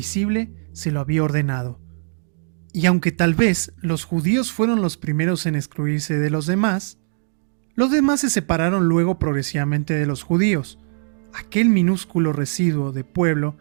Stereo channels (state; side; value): silent; left; digital silence